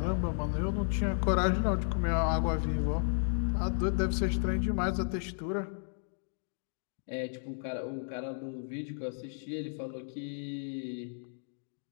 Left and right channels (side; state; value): right; silent; digital silence